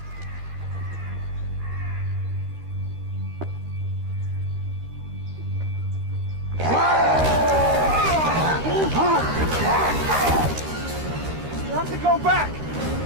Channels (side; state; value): left; late; 13 ms